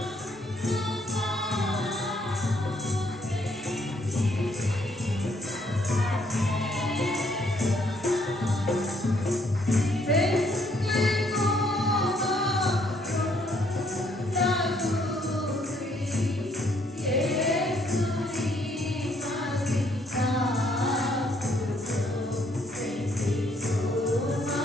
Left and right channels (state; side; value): normal; both; correlation 0.69